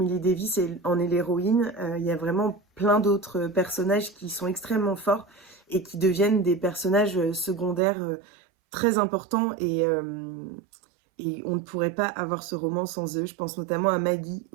Davis en est l'héroïne, il y a vraiment plein d'autres personnages qui sont extrêmement forts et qui deviennent des personnages secondaires très importants et on ne pourrait pas avoir ce roman sans eux. Je pense notamment à Maggie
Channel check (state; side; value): drops out; left; at 7.8 s